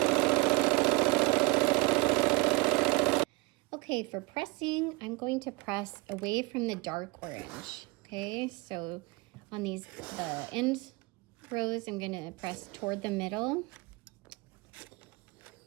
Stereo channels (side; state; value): left; quieter; 24.3 dB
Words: Okay, for pressing, I'm going to press away from the dark orange. Okay, so on the end rows, I'm going to press toward the middle.